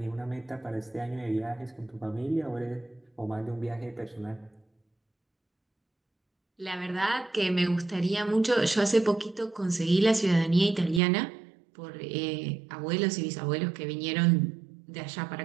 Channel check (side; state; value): left; drops out; at 11.0 s